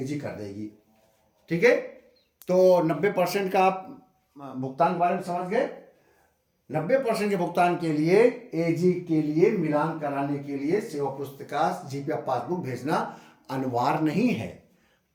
कर देगी। ठीक है, तो 90% का आप भुगतान के बारे में समझ गए। 90% के भुगतान के लिए एजी के लिए मिलान कराने के लिए सेवा पुस्तिका जीपीएफ पासबुक भेजना अनिवार्य नहीं है,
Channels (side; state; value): both; identical; correlation 1.00